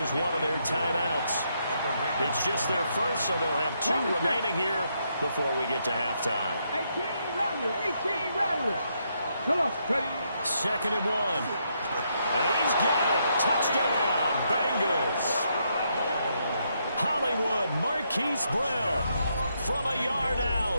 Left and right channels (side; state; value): both; inverted; correlation -0.77